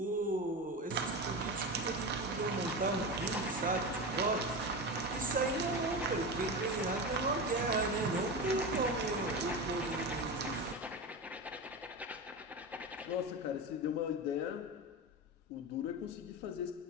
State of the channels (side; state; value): both; normal; correlation 0.22